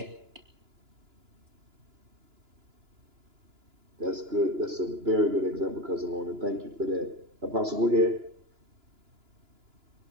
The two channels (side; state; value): left; late; 2.9 ms